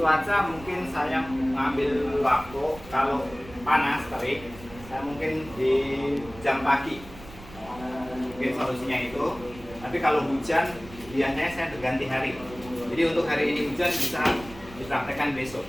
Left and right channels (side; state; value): right; noise; rumble, 18 dB below the sound